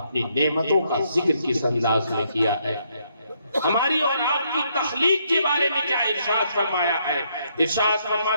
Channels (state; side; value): inverted; both; correlation -0.73